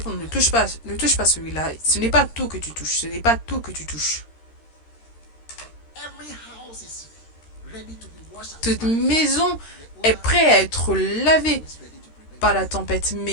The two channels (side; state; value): right; late; 13 ms